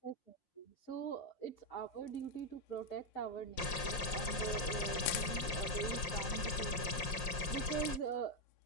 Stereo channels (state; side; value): late; right; 5.6 ms